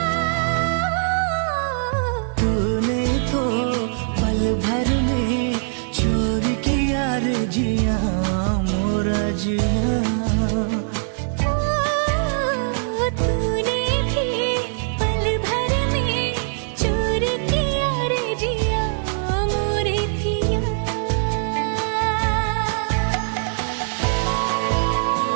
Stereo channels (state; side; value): silent; left; 64 dB below the other